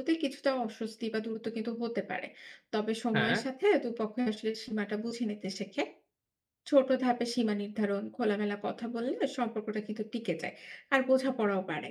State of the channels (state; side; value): identical; both; correlation 1.00